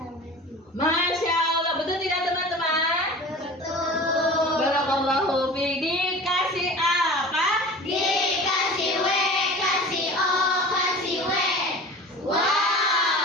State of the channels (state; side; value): normal; both; correlation 0.38